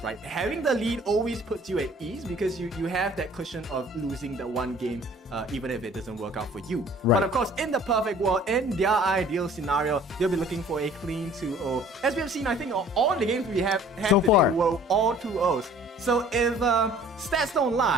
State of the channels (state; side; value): normal; both; correlation 0.52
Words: right? Having the lead always puts you at ease because you have that cushion of losing the 1 game even if it doesn't work out for you. Right. But of course, in the perfect world, in their ideal scenario, they'll be looking for a clean 2-0. As we have seen, I think all the games we have had so today far were all 2-0s. So if stats don't